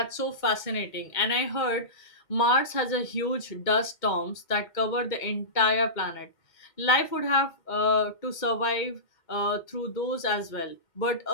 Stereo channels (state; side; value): late; right; 2.1 ms